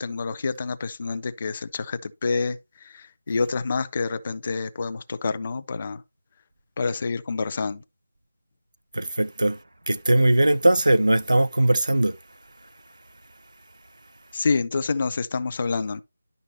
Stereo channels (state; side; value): inverted; both; correlation -0.94